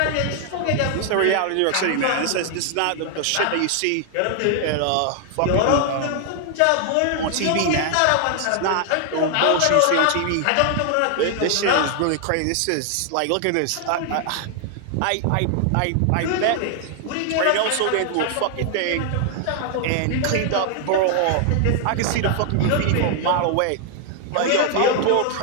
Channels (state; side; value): different; both; correlation 0.00